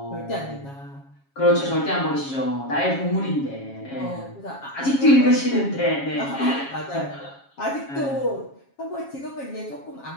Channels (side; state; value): right; late; 7.3 ms